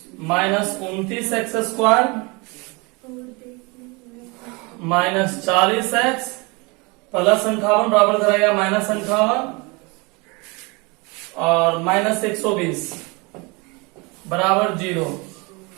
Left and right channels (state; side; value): quieter; left; 28.0 dB